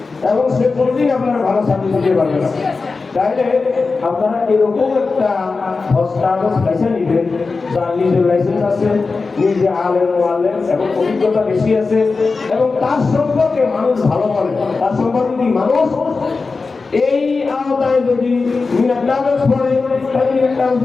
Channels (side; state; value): right; quieter; 4.2 dB